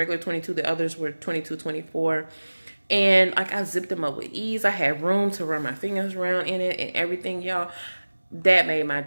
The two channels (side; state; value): both; inverted; correlation -1.00